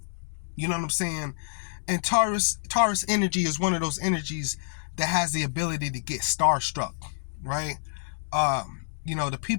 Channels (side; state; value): right; silent; digital silence